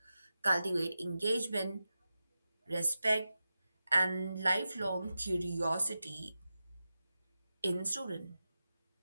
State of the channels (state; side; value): inverted; both; correlation -0.92